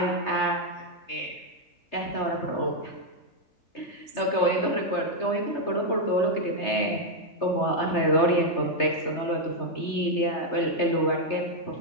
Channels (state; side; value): late; right; 3.3 ms